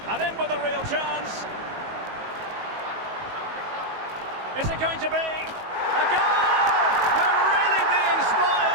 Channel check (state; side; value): late; left; 19 ms